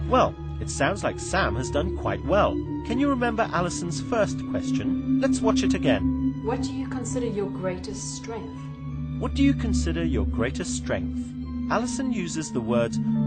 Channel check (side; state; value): both; identical; correlation 1.00